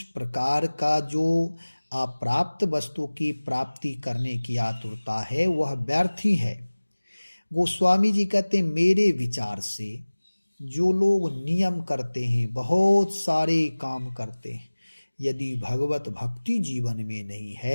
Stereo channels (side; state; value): both; inverted; correlation -1.00